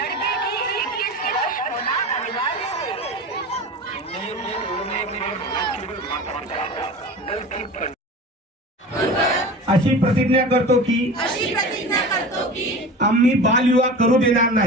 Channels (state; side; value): normal; both; correlation 0.34